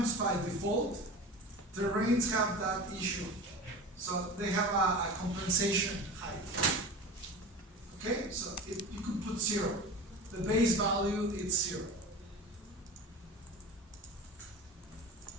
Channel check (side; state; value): both; normal; correlation 0.33